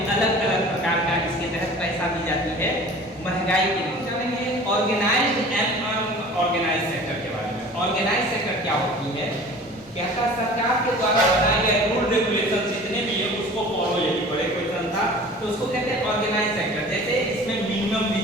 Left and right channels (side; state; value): both; normal; correlation 0.43